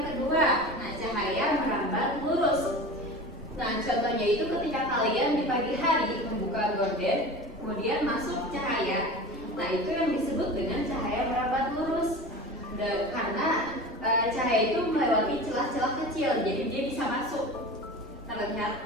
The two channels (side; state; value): both; normal; correlation 0.33